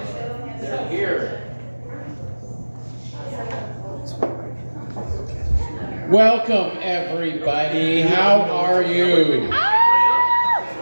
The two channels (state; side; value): inverted; both; correlation -1.00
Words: They're here. Welcome, everybody. How are you?